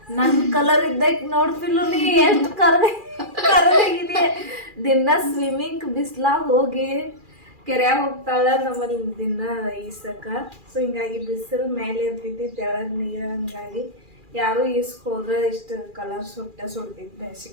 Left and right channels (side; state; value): left; late; 2.4 ms